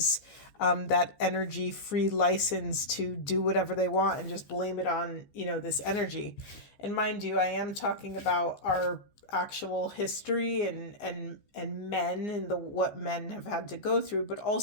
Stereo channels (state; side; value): late; right; 14 ms